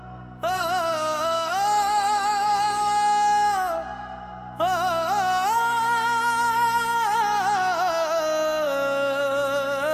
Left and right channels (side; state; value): both; identical; correlation 1.00